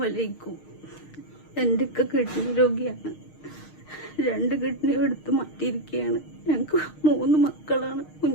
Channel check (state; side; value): late; right; 6.5 ms